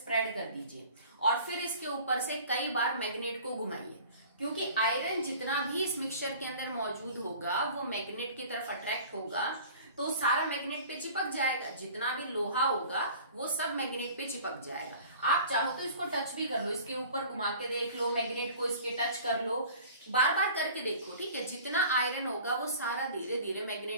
कर दीजिए और फिर इसके ऊपर से कई बार मैग्नेट को घुमाइए, क्योंकि आयरन जितना भी इस मिक्सचर के अंदर मौजूद होगा वो मैग्नेट की तरफ अट्रैक्ट होगा, तो सारा मैग्नेट पे चिपक जाएगा। जितना भी लोहा होगा वो सब मैग्नेट पे चिपक जाएगा। आप चाहो तो इसको टच भी कर लो, इसके ऊपर घुमा के देख लो, मैग्नेट को इसके टच कर लो, बार बार करके देखो, ठीक है। जितना आयरन होगा वो सारा धीरे धीरे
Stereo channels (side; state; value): both; inverted; correlation -0.45